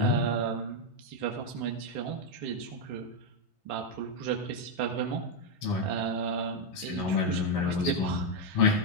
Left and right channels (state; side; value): late; left; 3.6 ms